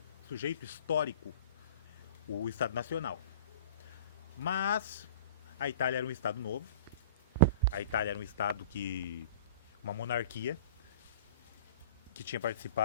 sujeito histórico, o Estado Nacional. Mas a Itália era um Estado novo, a Itália era um Estado uma monarquia, que tinha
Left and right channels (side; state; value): both; inverted; correlation -0.42